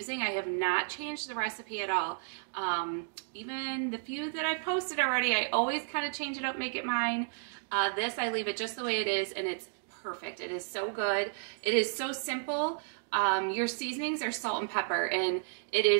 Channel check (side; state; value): left; silent; digital silence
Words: I have not changed the recipe at all. Even the few that I've posted already, I always kind of change it up, make it mine. This, I leave it just the way it is, and it's perfect. It is so good. It is so simple. Your seasonings are salt and pepper, and it